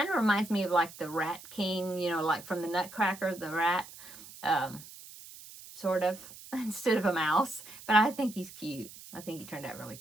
of reminds me of like the Rat King, like from the Nutcracker, the rat, sort of, instead of a mouse. But I think he's cute. I think he turned out really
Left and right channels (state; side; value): noise; right; hiss, 17 dB below the sound